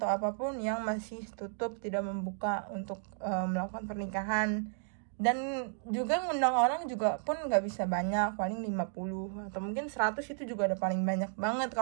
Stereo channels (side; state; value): left; silent; digital silence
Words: apapun yang masih tutup, tidak membuka untuk melakukan pernikahan. Dan juga ngundang orang juga pun nggak bisa banyak, paling 50 atau mungkin 100 itu juga ada paling banyak banget.